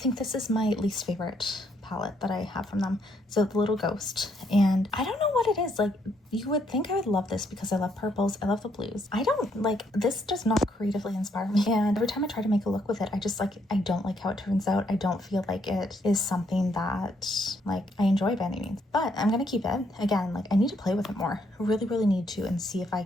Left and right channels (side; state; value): both; normal; correlation 0.72